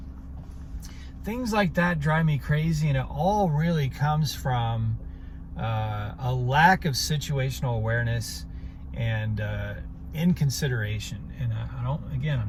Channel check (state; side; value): identical; both; correlation 1.00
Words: things like that drive me crazy. And it all really comes from a lack of situational awareness and inconsideration. And I'm